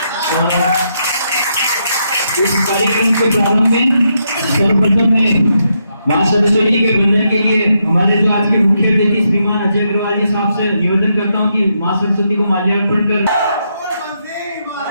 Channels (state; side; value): inverted; both; correlation -0.80